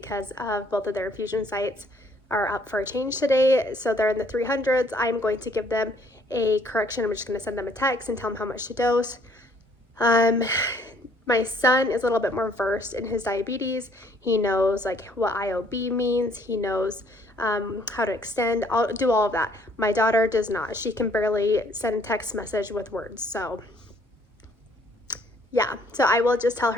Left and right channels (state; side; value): normal; both; correlation 0.62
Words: of both of their infusion sites are up for a change today. So they're in the 300s. I'm going to give them a correction. I'm just going to send them a text and tell them how much to dose. My son is a little bit more versed in his diabetes. He knows like what IOB means. He knows how to extend. I'll do all of that. My daughter does not. She can barely send a text message with words. So yeah, so I will just tell